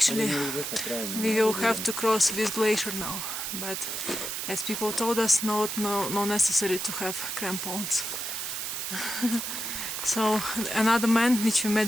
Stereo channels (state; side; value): noise; right; hiss, 4 dB below the sound